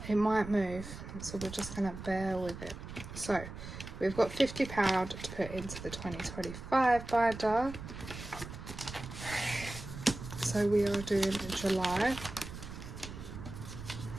It might move, so we're just gonna bear with it. So we've got £50 to put into the 2025 binder. So we are doing July.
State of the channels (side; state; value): right; noise; rumble, 11 dB below the sound